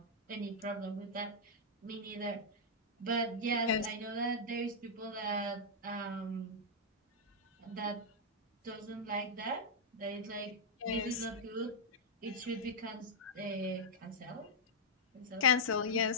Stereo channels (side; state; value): both; normal; correlation -0.07